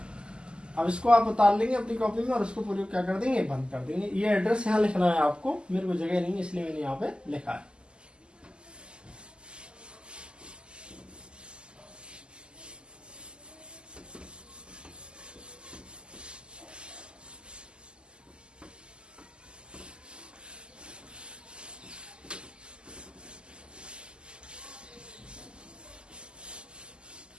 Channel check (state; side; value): late; left; 0.049 ms